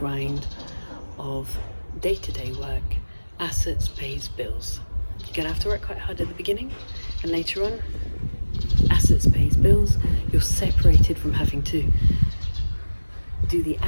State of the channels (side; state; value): both; inverted; correlation -1.00